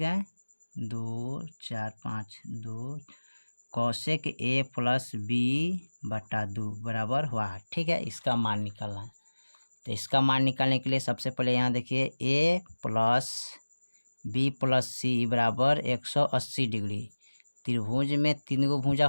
है, 2 4 5 2 कौशिक a+b/2 बराबर हुआ, ठीक है। इसका मान निकालना है। तो इसका मान निकालने के लिए सबसे पहले यहाँ देखिए a+b+c बराबर 180 डिग्री। त्रिभुज में 3 गो भुजा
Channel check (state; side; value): inverted; both; correlation -1.00